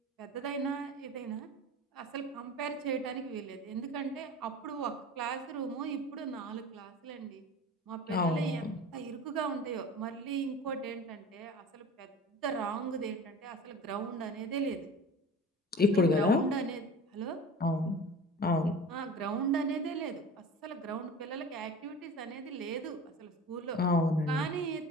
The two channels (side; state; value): both; normal; correlation 0.38